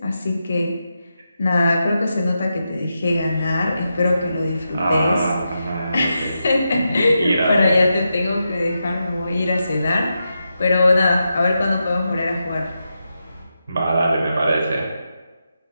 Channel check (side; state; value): both; inverted; correlation -0.87